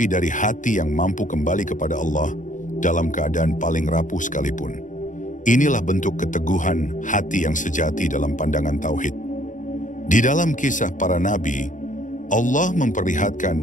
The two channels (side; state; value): right; late; 0.37 ms